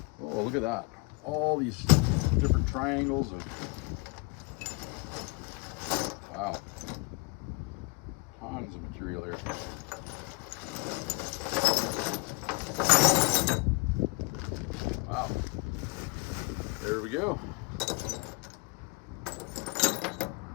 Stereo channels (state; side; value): quieter; right; 28.0 dB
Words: Oh, look at that. All these different triangles of, wow, tons of material here. Wow, there we go.